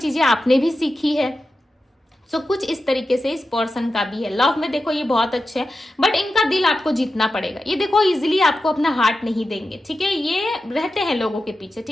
आपने भी सीखी है। सो कुछ इस तरीके से इस पर्सन का भी है। लव में देखो ये बहुत अच्छे है, बट इनका दिल आपको जीतना पड़ेगा। ये देखो इजीली आपको अपना हार्ट नहीं देंगे, ठीक है, ये रहते हैं लोगों के पीछे,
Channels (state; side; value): normal; both; correlation 0.91